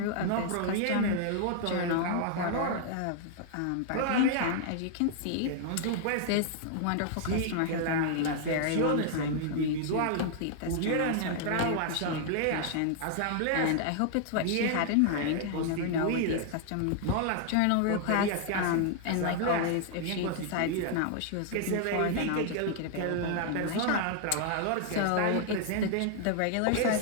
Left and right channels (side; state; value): both; different; correlation -0.01